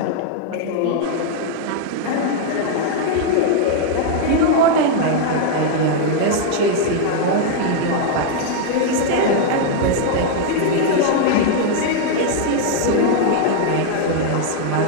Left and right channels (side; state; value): both; different; correlation 0.00